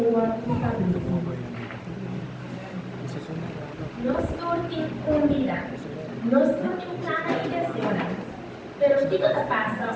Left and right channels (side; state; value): both; identical; correlation 1.00